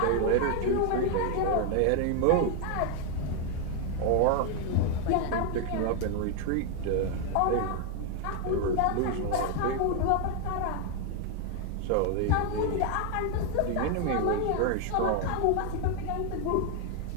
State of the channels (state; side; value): different; both; correlation 0.00